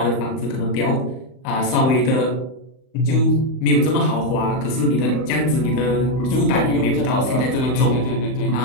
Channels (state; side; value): late; right; 39 ms